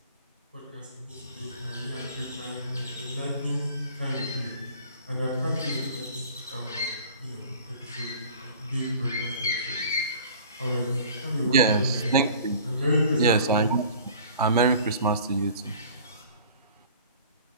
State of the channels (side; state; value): both; inverted; correlation -0.46